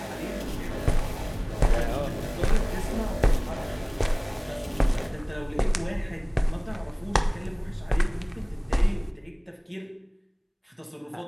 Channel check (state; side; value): identical; both; correlation 1.00